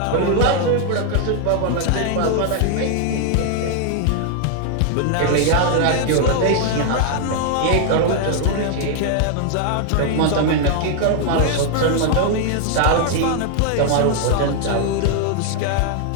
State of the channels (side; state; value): both; different; correlation 0.00